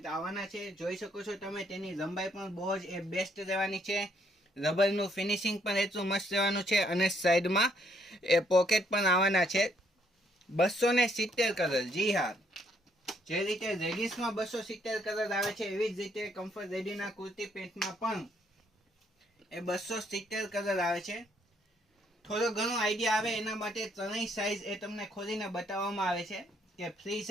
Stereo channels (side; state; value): both; normal; correlation 0.70